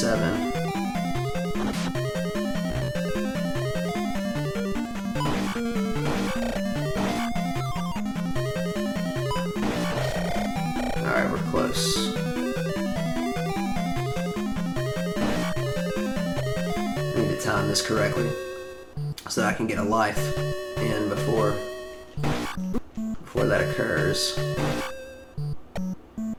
Alright, we're close. I need to time this correctly so that I can get a life in before that occurs.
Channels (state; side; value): identical; both; correlation 1.00